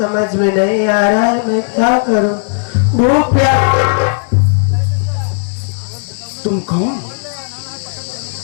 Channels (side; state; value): right; silent; digital silence